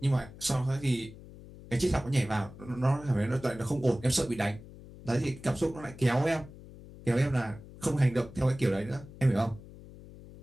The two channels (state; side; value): noise; left; hum, 17 dB below the sound